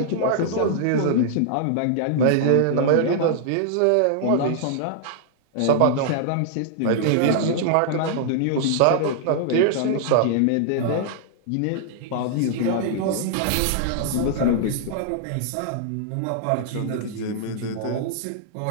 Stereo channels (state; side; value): different; both; correlation -0.01